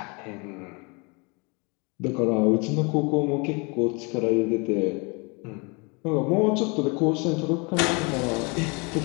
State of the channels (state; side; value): quieter; right; 30.5 dB